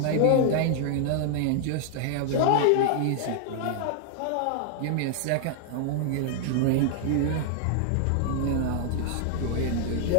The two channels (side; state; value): both; different; correlation 0.00